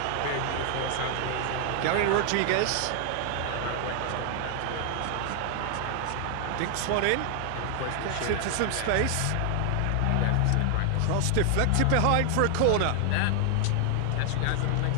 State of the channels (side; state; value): both; different; correlation 0.00